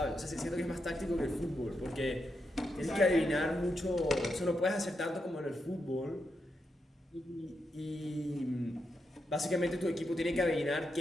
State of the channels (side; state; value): both; normal; correlation 0.84